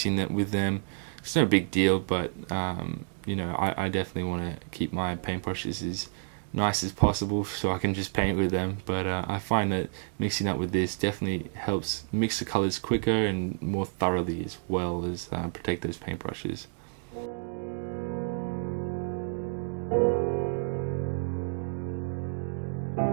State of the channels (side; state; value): left; silent; digital silence